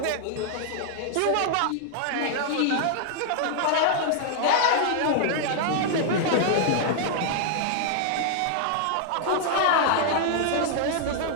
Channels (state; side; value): different; both; correlation -0.01